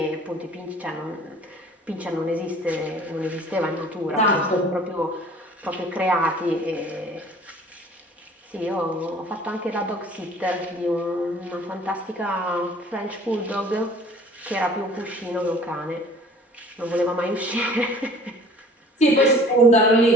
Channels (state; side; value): normal; both; correlation 0.50